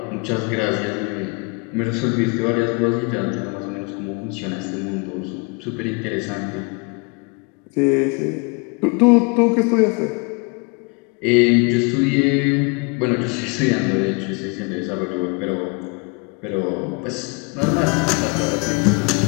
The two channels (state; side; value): quieter; right; 32.0 dB